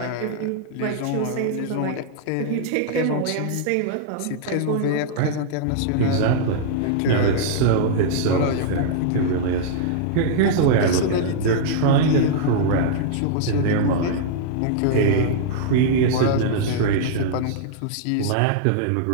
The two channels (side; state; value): both; different; correlation -0.01